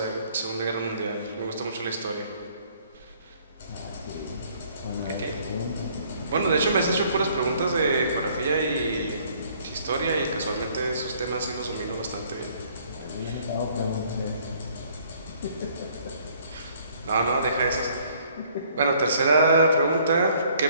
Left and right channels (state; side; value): inverted; both; correlation -0.61